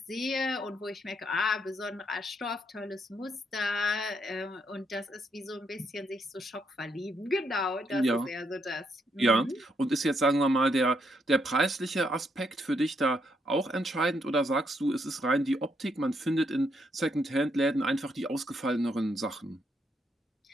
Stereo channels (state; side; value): normal; both; correlation 0.76